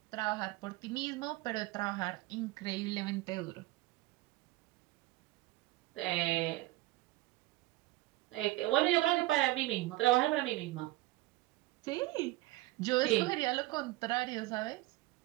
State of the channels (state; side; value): quieter; left; 18.9 dB